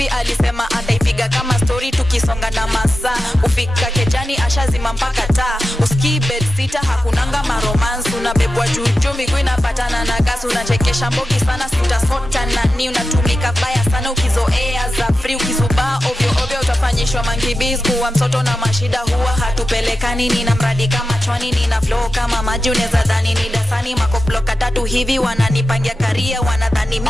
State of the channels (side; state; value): both; normal; correlation 0.91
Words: alisema ataipiga kama story tukisonga na masaa. Ufika kejani ashazima mpaka taa. Uski bed sita hakunanga maromance. Unabebwa juju miguu inapatana na gas. Unachekesha mbogi sana sitasota nani. Unatumika baya sana ukizoea za free. Ukizubaa ovyo ovyo utafanyishwa mankibiz. Kuwa mtoto na mashida huwa hatupelekani. Nina mradi kama chwani, nina flow kama maji. Uneza dhani ni dasani makoploka tatu hivi. Wananipangia karia, wanadhani